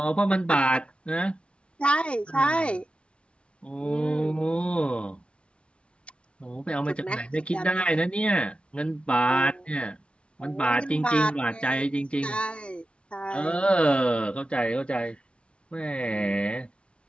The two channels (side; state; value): right; late; 0.059 ms